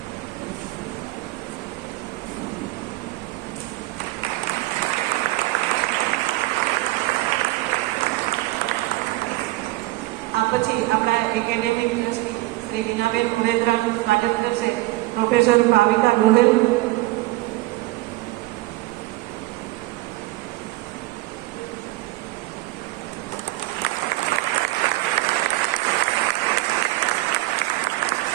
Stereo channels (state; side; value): quieter; left; 19.1 dB